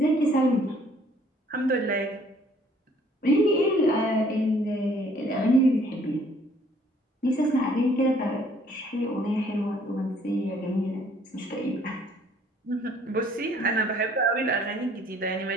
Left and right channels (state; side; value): normal; both; correlation 0.60